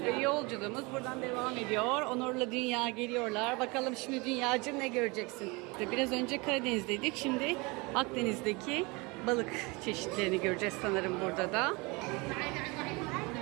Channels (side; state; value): left; quieter; 26.5 dB